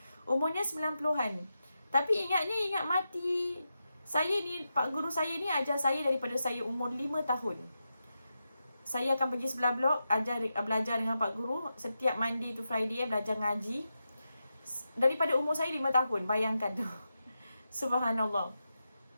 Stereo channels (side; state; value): both; inverted; correlation -0.89